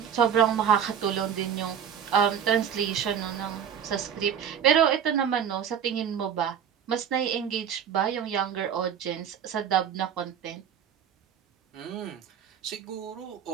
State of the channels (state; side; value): quieter; left; 8.4 dB